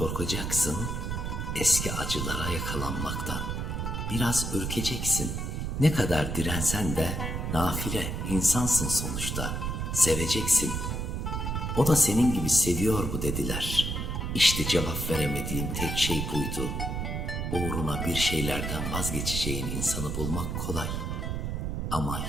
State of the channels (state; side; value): noise; right; rumble, 2 dB below the sound